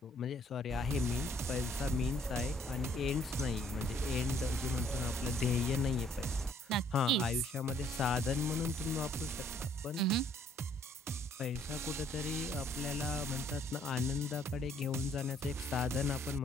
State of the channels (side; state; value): both; normal; correlation 0.64